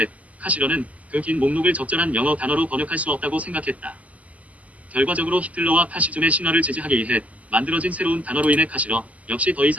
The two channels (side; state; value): left; late; 0.072 ms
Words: 카시러는 그 긴 목록을 적절한 영어 단어로 번역할 수 없다고 생각했다. 결과적으로 히틀러와 파시즘의 신화를 지지하기 위해 만들어진 새로운 단어로 인해 카시러 역시 더